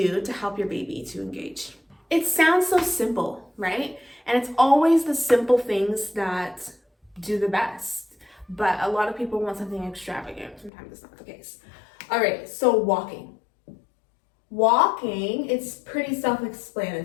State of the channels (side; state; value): right; drops out; at 10.7 s